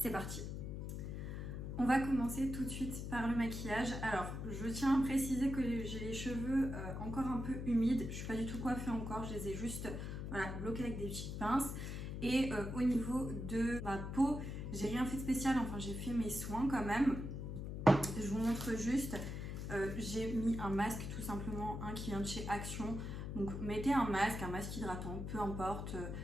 parti. On va commencer tout de suite par le maquillage. Alors, je tiens à préciser que j'ai les cheveux encore un peu humides. Je ne suis pas du tout coiffée encore, je les ai juste bloqués avec des petites pinces. Et au niveau de ma peau, j'ai rien fait de spécial, enfin j'ai fait mes soins quand même. Je vous montre juste, j'ai mis un masque tout simplement, un qui vient de chez Action. Donc mettez un masque hydratant, peu importe,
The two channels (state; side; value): noise; left; hum, 5 dB below the sound